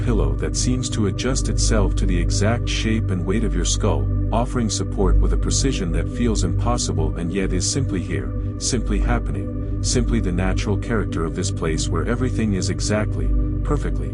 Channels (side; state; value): both; identical; correlation 1.00